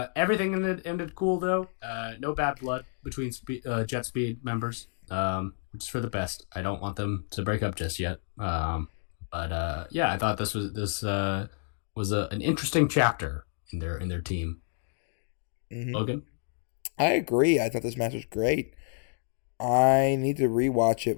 everything ended cool though. No bad blood between Jet Speed members, which is for the best. I don't want them to break up just yet. But yeah, I thought this was an interesting chapter in their team. Mm-hmm. Logan, I agree. I thought this match was great. I need to rewatch it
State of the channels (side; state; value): right; silent; 58 dB below the other